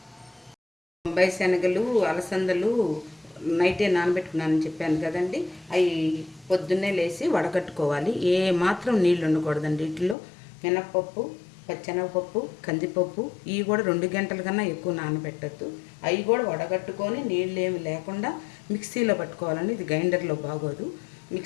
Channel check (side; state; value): right; drops out; at 10.2 s